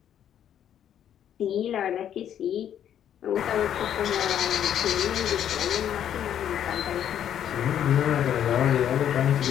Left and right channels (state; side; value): quieter; right; 9.9 dB